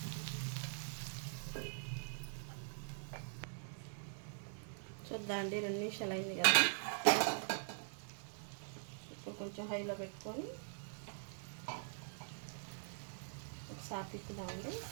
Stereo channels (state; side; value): silent; left; digital silence